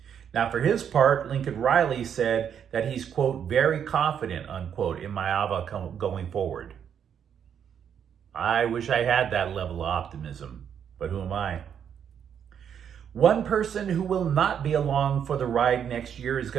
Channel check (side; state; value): left; quieter; 8.3 dB